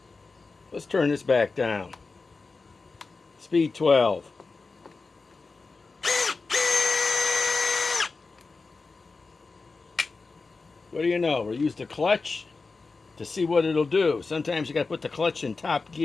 Let's turn this back down. Speed 12. What do you know? We'll use the clutch to see what it'll do. Sometimes you got to put the clutch in top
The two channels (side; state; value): right; quieter; 4.1 dB